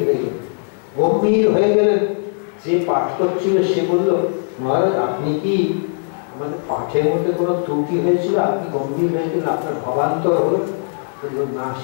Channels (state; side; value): silent; right; 66 dB below the other